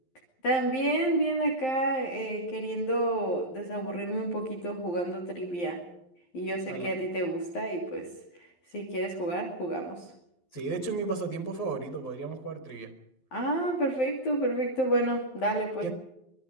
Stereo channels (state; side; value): late; right; 12 ms